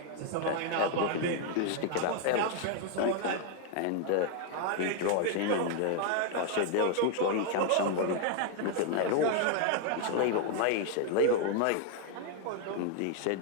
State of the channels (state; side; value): different; both; correlation 0.00